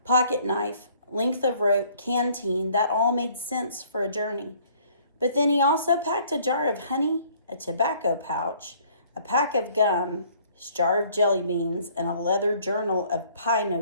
pocket knife, length of rope, canteen, that all made sense for a journey. But then he also packed a jar of honey, a tobacco pouch, a pack of gum, his jar of jelly beans, and a leather journal of pie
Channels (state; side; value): inverted; both; correlation -0.58